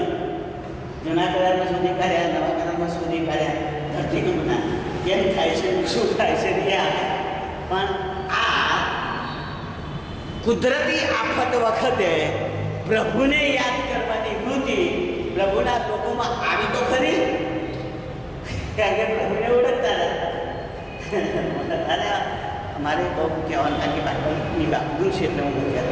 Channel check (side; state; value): both; identical; correlation 1.00